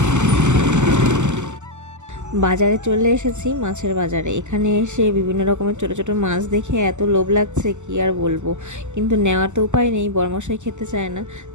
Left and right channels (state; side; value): late; left; 0.84 ms